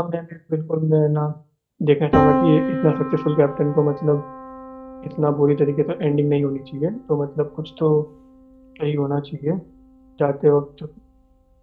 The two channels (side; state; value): both; identical; correlation 1.00